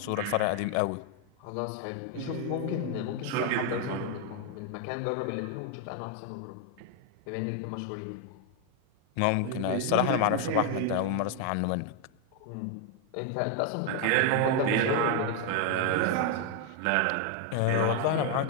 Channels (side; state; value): both; different; correlation 0.01